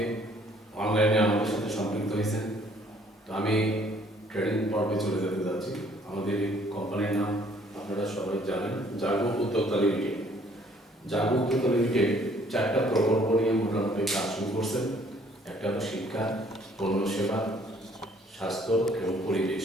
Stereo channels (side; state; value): both; normal; correlation 0.61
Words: অনলাইনে আমাদের সাথে সম্পৃক্ত হয়েছেন। তো আমি ট্রেনিং পর্বে চলে যেতে যাচ্ছি। আমাদের এই কোম্পানির নাম আপনারা সবাই জানেন, জাগো উদ্যোক্তা লিমিটেড। জাগো উদ্যোক্তা লিমিটেড 4টা প্রকল্প নিয়ে মোটামুটি কাজ শুরু করছেন। একটা হলো শিক্ষা, পণ্য সেবা, স্বাস্থ্য এবং পরিবেশ।